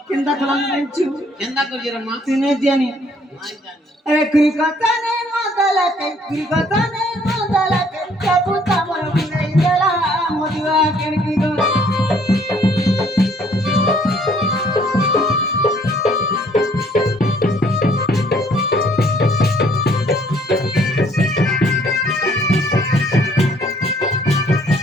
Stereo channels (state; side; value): normal; both; correlation 0.62